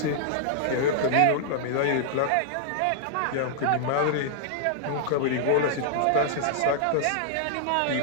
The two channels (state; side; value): different; both; correlation -0.01